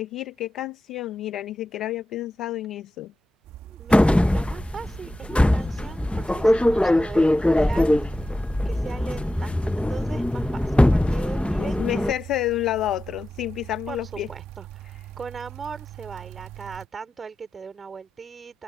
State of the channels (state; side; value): normal; both; correlation 0.92